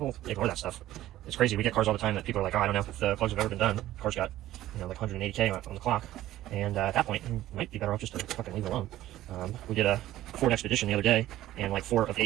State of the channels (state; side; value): quieter; left; 14.4 dB